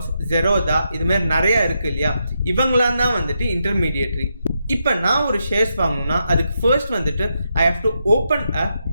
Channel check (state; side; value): inverted; both; correlation -0.83